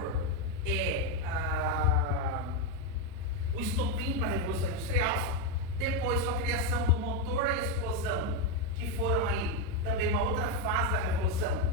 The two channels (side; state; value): both; normal; correlation 0.05